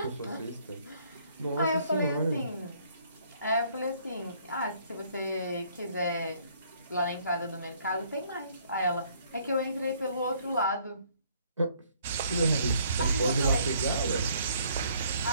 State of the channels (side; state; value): both; inverted; correlation -0.63